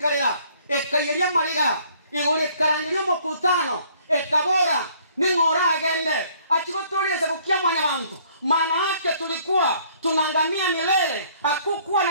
ekayeria mariga igore karangirio mokutano ekabora ningora agende achigotoleza kukia mwanya bantu maana yake tulikuwa tunangamia milele hakukuwa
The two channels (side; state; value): both; inverted; correlation -0.60